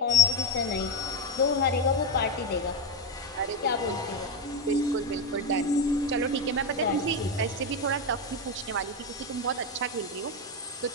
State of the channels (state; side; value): normal; both; correlation 0.12